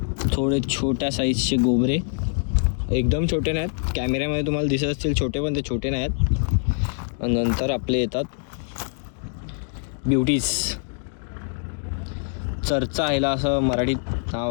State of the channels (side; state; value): right; silent; 62 dB below the other